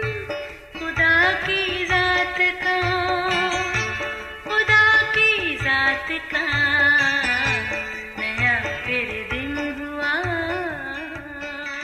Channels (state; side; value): identical; both; correlation 1.00